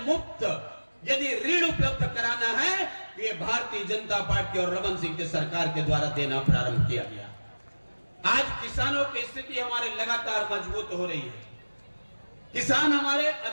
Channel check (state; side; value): inverted; both; correlation -1.00